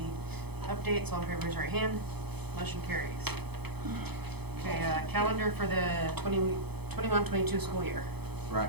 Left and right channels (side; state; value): left; late; 0.98 ms